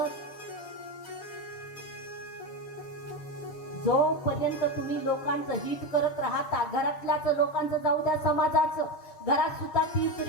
जोपर्यंत तुम्ही लोकांचं हित करत राहता, घरातल्याच लोकांचं जाऊ द्या, समाजाचं, घरात सुद्धा तीच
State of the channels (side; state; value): right; late; 6.8 ms